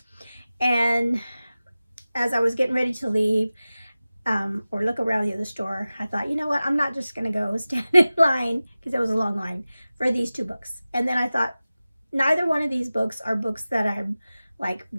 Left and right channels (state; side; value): inverted; both; correlation -0.96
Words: And as I was getting ready to leave or look around the other store, I thought, you know what, I'm not just going to go stand in line, because there was a long line for these 2 books. And then I thought, neither one of these books are books that I'm like